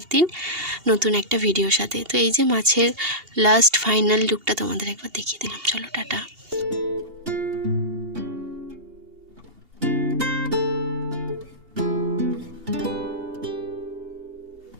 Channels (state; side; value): late; left; 2.8 ms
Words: দিন নতুন একটা ভিডিওর সাথে। তো এই যে মাছের লাস্ট ফাইনাল লুকটা তোমাদের একবার দেখিয়ে দিলাম। চলো, টাটা।